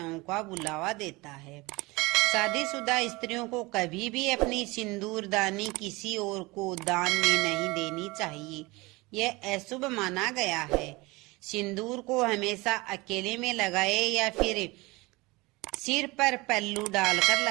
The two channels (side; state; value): left; quieter; 23.3 dB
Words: का बुलावा देता है। शादीशुदा स्त्रियों को कभी भी अपनी सिंदूरदानी किसी और को दान में नहीं देनी चाहिए। यह अशुभ माना गया है। सिंदूर को हमेशा अकेले में लगाएं या फिर सिर पर पल्लू डालकर